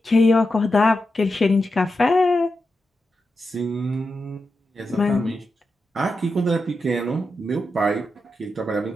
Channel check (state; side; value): normal; both; correlation 0.88